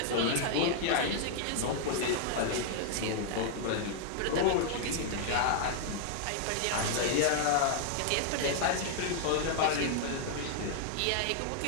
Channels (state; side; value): different; both; correlation -0.01